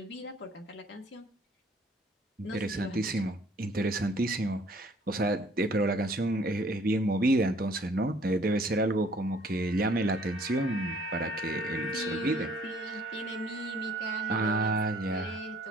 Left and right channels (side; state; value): both; normal; correlation 0.58